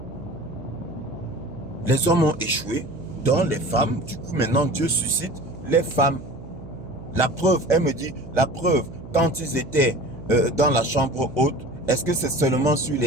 les hommes ont échoué, donc les femmes, du coup maintenant Dieu suscite les femmes. La preuve, elle me dit, la preuve, quand ils étaient dans la chambre haute, est-ce que c'est seulement sur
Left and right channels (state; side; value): noise; right; hum, 15 dB below the sound